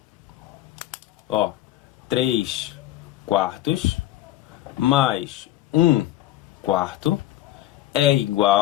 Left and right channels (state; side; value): quieter; right; 14.5 dB